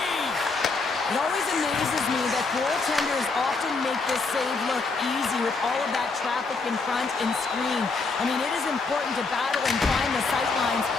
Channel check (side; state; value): right; quieter; 4.0 dB